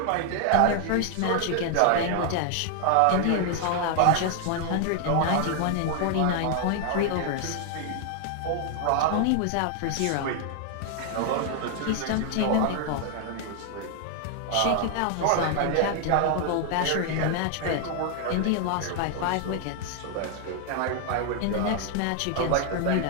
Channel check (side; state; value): both; different; correlation 0.00